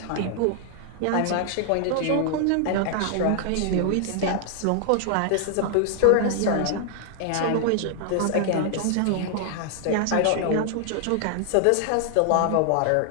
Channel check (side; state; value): both; different; correlation 0.00